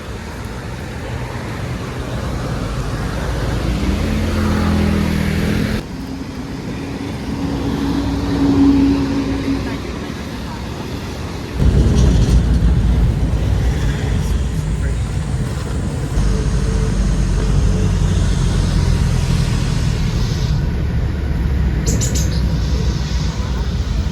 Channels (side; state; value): both; identical; correlation 1.00